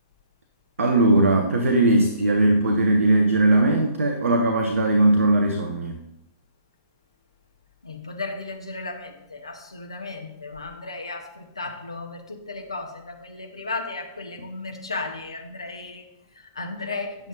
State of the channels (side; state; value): both; inverted; correlation -0.67